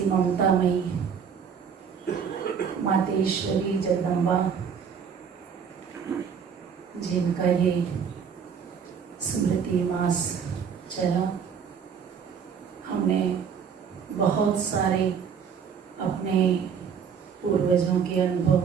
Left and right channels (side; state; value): left; quieter; 7.0 dB